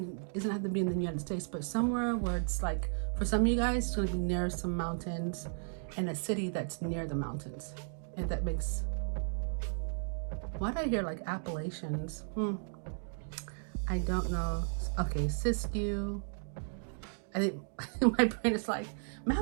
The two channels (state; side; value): silent; left; digital silence